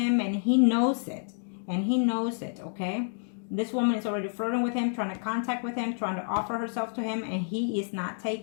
and he knows it. And he knows it, okay? This woman is already flirting with him, trying to contact with him, trying to offer herself to him, and he is not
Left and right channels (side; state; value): right; silent; digital silence